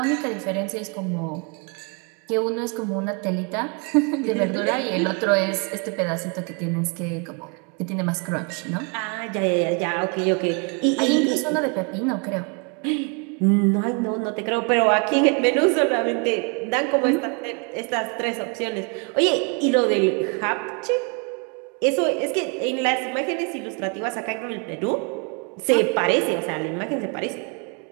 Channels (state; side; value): quieter; left; 35.2 dB